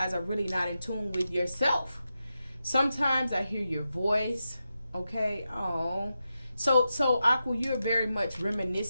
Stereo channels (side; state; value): both; inverted; correlation -0.89